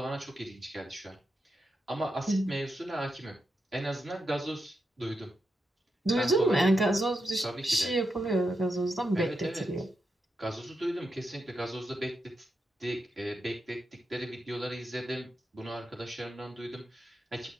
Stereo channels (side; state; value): both; normal; correlation 0.86